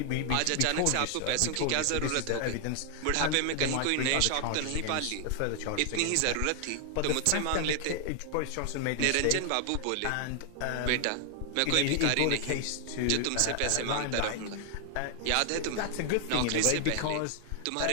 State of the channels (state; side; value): different; both; correlation 0.00